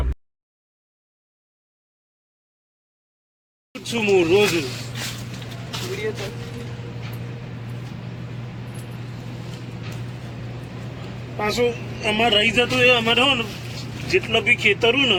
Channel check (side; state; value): both; identical; correlation 1.00